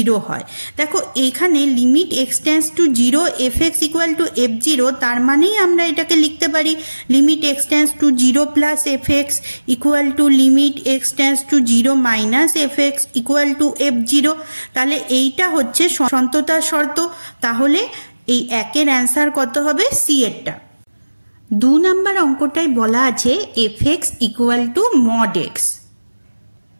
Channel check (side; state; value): both; inverted; correlation -1.00